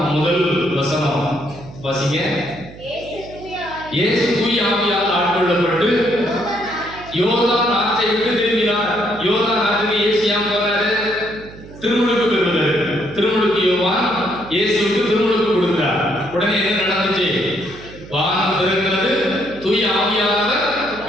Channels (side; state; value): right; noise; hum, 17 dB below the sound